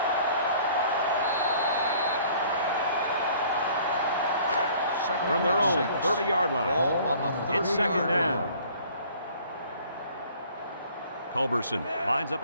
From their own 30-yard line. Ball on the 30-yard It's second down. line. Culberson lines up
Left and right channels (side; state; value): both; inverted; correlation -0.54